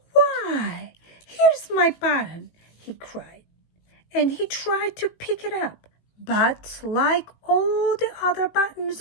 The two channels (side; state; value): right; late; 18 ms